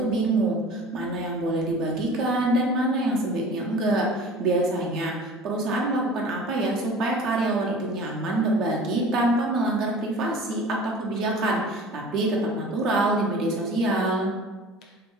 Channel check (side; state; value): both; normal; correlation 0.42